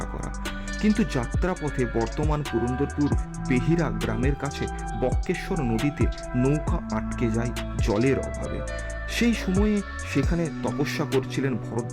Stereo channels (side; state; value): both; identical; correlation 1.00